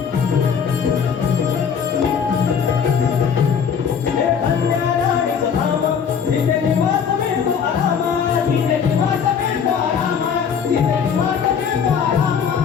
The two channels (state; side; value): quieter; right; 6.9 dB